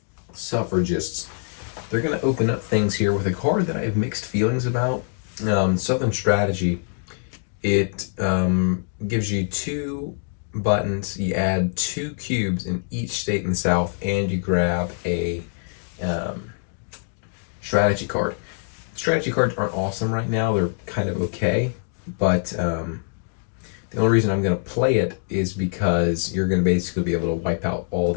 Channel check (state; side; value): silent; right; 57 dB below the other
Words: suffragists. They're going to open up things here with a card that I have mixed feelings about. Southern Strategy. It gives you two buttons. You add two cubes in each state in the South, and you grab a strategy card. Strategy cards aren't awesome right now. They're kind of okay, but the only reason I'm going to play it is because you're going to basically be able to wipe out all